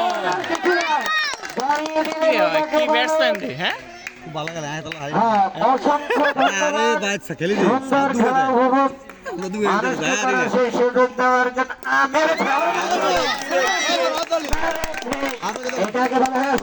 দাঁড়িয়ে দিলেন কি ব্যাটসম্যান রে, হ্যাঁ হ্যাঁ, অসংখ্য ধন্যবাদ, সুন্দর খেলা উপভোগ সেই সুযোগ দেওয়ার জন্য এটাকে বলা হয়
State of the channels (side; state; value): both; identical; correlation 1.00